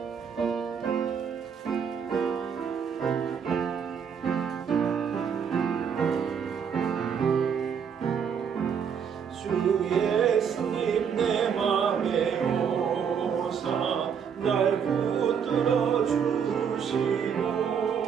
예수님 내 맘에 오사 날 붙들어 주시고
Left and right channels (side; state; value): left; quieter; 7.2 dB